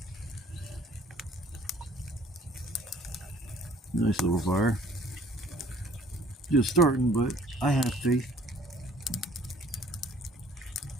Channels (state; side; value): normal; both; correlation 0.55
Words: Nice little fire. Just starting, but I have faith.